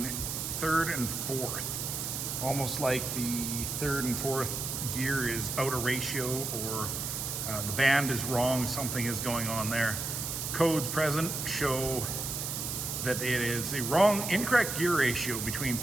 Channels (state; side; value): noise; right; hiss, 3 dB below the sound